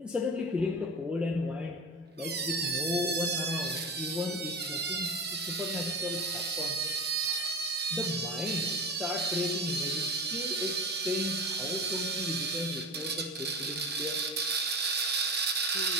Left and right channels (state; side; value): normal; both; correlation 0.28